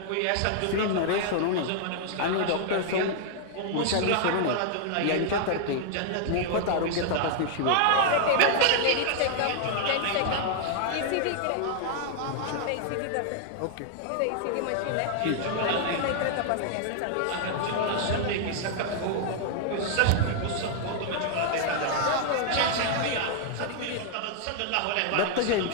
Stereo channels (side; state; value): both; different; correlation 0.00